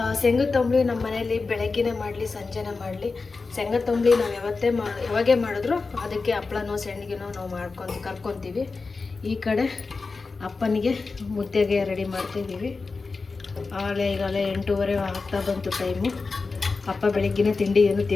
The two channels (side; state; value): right; quieter; 4.2 dB